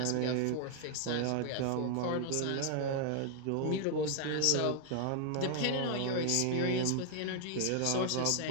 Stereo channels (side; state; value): both; different; correlation 0.00